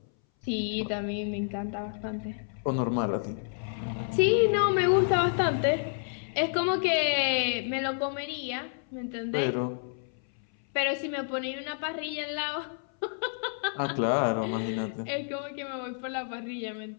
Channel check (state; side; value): silent; right; 58 dB below the other